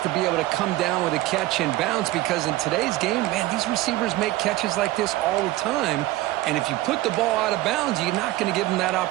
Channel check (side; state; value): left; quieter; 17.2 dB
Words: to be able to come down with a catch and bounce, because in today's game, man, these receivers make catches like this all the time. And if you put the ball out of bounds, you're not going to give them that